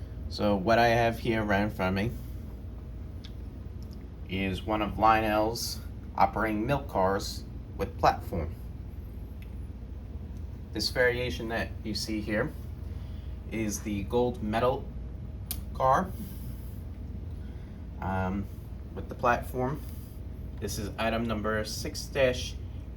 So what I have here right in front of me is one of Lionel's operating milk cars with platform. This variation that you see here is the gold medal car with the platform. This is item number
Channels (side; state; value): both; identical; correlation 1.00